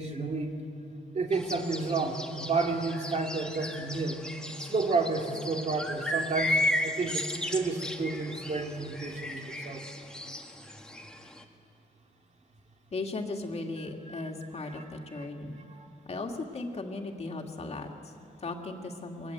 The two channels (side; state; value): both; normal; correlation 0.56